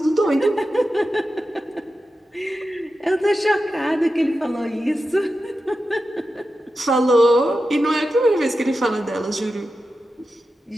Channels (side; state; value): both; normal; correlation 0.91